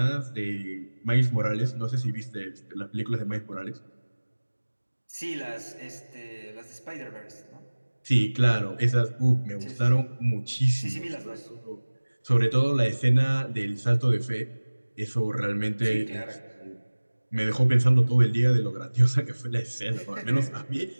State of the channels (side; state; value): both; inverted; correlation -1.00